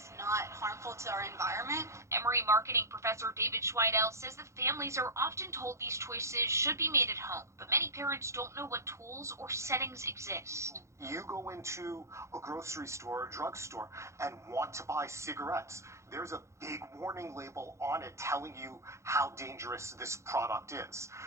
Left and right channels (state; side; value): late; left; 0.14 ms